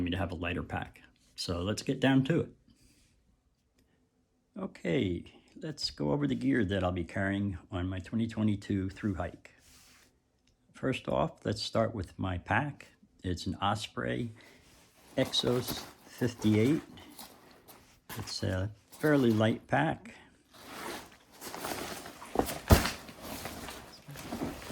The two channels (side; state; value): both; identical; correlation 1.00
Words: to have a lighter pack. So let's get down to it. Okay, let's go over the gear that I'll be carrying on my 2022 thru hike. First off, let's start with my pack. It's an Osprey Exos 58. It's a fairly light pack.